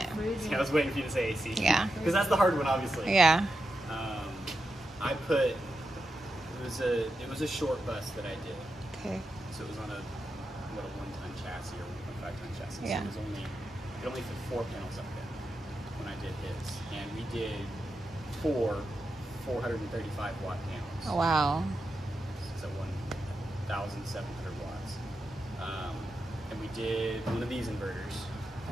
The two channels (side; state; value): both; normal; correlation 0.88